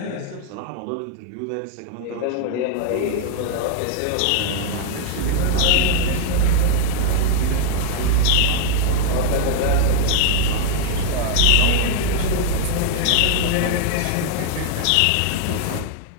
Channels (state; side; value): different; both; correlation 0.00